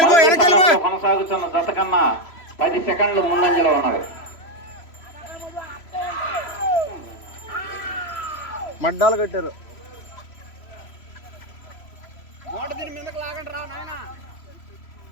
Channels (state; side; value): late; right; 3.0 ms